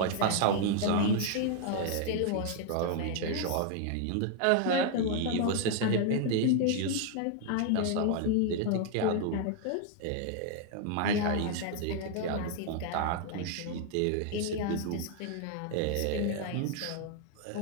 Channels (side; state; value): both; different; correlation 0.00